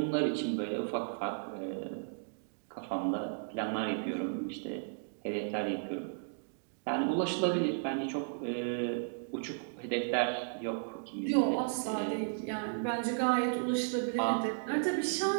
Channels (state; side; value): silent; left; digital silence